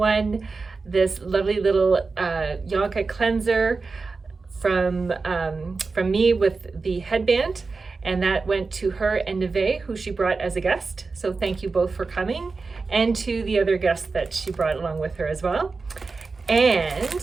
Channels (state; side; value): quieter; left; 4.2 dB